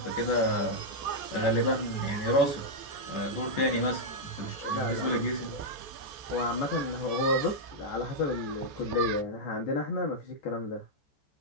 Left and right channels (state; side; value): late; right; 14 ms